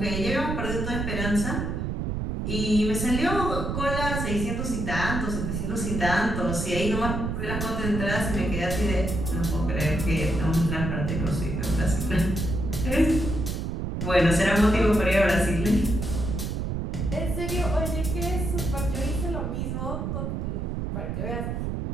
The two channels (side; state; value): right; noise; rumble, 2 dB below the sound